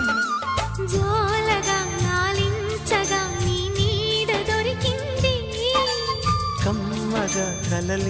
జోలగా లాలించగా నీ నీడ దొరికింది. కమ్మగా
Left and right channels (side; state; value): both; identical; correlation 1.00